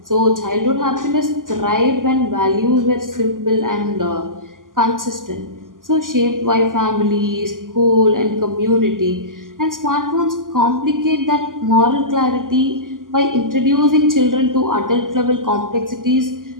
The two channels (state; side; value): late; left; 0.90 ms